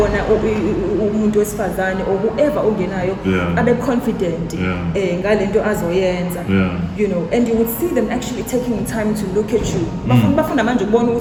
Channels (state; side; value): identical; both; correlation 1.00